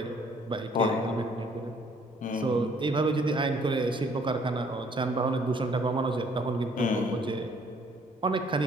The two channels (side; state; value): both; normal; correlation 0.61